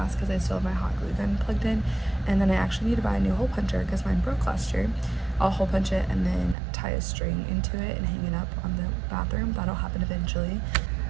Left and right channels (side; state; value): left; drops out; at 6.6 s